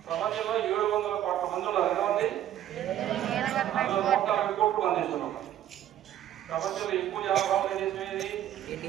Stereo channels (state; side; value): quieter; left; 11.7 dB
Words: ప్రపంచంలో 700 కోట్ల మంది ఉన్నారు. ఎంతమంది? 140 కోట్లు మంది ఇస్తున్నాం. ప్రపంచంలో ఎక్కువ జనాభా ఉన్న దేశం ఏది?